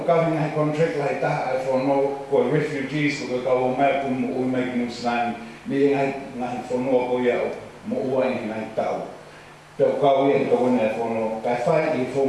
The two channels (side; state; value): both; identical; correlation 1.00